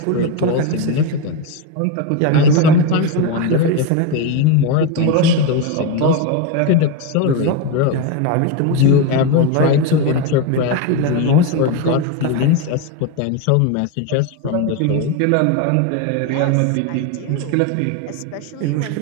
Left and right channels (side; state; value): both; different; correlation 0.03